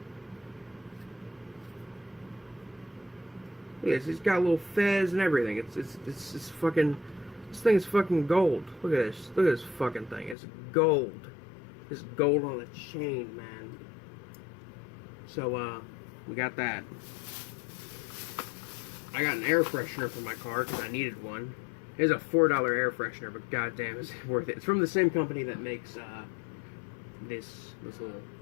Look at this. It's got a little fez and everything. It's fucking. This thing is fucking gold. Look at this. Look at this fucking thing. It's gold. It's gold on a chain, man. So, we got that. I got an air freshener for my car because I needed one. It's a $4 air freshener, but goddamn, it's worth it. It's from the same company that makes this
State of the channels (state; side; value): drops out; right; at 10.4 s